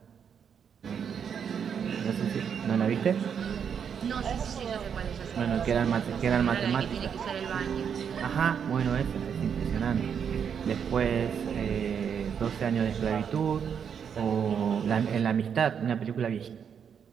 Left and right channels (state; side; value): quieter; left; 7.5 dB